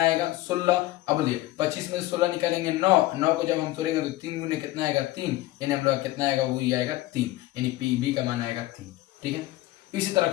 आएगा 16। अब बोलिए 25 में 16 निकालेंगे 9, 9 को जब हम तोड़ेंगे तो 3 गुने कितना आएगा 3, यानी हम लोग कितना आएगा वही आएगा 3, यानी पी बी का मान आएगा 3। ठीक है, इसी तरह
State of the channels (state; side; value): quieter; right; 17.2 dB